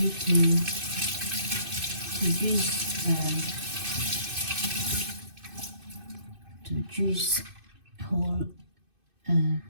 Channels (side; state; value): left; late; 2.6 ms